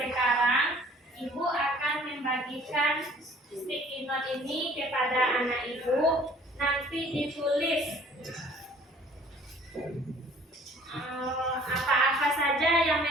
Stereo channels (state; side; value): normal; both; correlation 0.54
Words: ibu akan membagikan sticky note ini kepada anak ibu. Nanti ditulis apa-apa saja yang